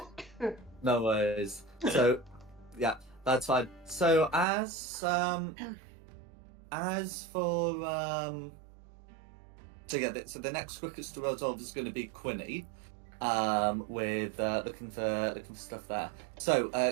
No worries. So, yeah, that's fine. So as for so the next quickest to resolve is going to be Quinny, with looking for stuff there. So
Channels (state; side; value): drops out; left; at 4.5 s